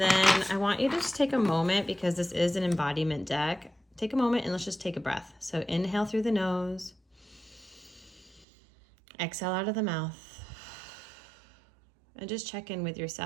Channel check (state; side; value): drops out; left; at 8.5 s